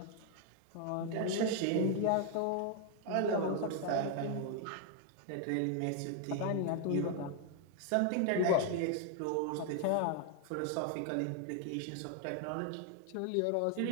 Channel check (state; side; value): different; both; correlation 0.00